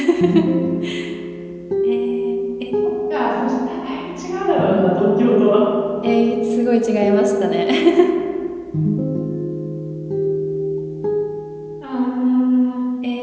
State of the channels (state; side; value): identical; both; correlation 1.00